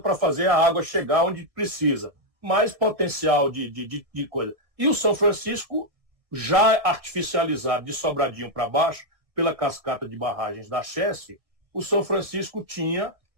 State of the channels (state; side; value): late; left; 1.7 ms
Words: para fazer a água chegar onde precisa. Mais potencial de coisa. E o São Francisco, já artificializado de Sobradinho para baixo, pela cascata de barragens da Chesse, o São Francisco tinha